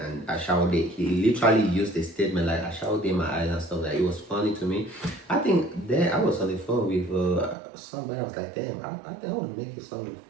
and I shall date. He literally used the statement like I shall date my eyes and stuff like that. It was funny to me. I think then I was on the phone with somebody. I was like, damn, I think I want to make a song with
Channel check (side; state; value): left; drops out; at 7.6 s